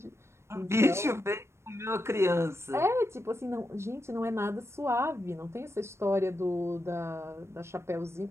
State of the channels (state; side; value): late; left; 0.13 ms